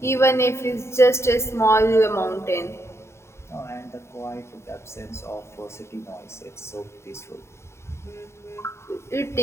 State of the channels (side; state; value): right; late; 0.13 ms